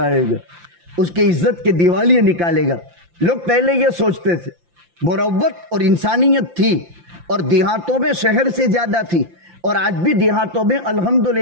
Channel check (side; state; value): left; late; 5.8 ms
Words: उसकी इज्जत के दिवालियां निकालेगा। लोग पहले ये सोचते थे, मुरव्वत और इंसानियत थी, और देहातों में शहर से ज्यादा थी, और आज भी देहातों में